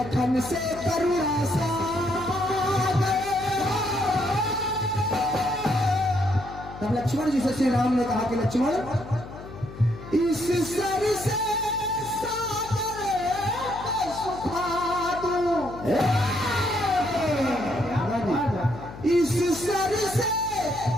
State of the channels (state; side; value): noise; left; hum, 14 dB below the sound